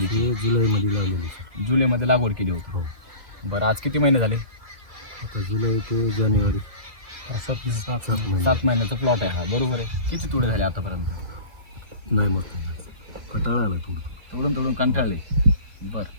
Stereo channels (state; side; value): late; left; 1.8 ms